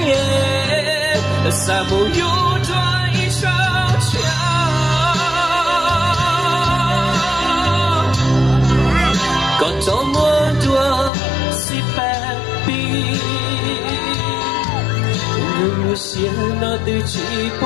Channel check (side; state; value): right; drops out; at 11.1 s